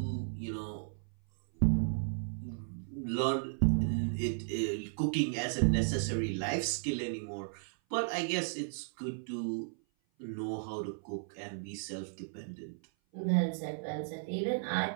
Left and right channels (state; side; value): silent; left; 55 dB below the other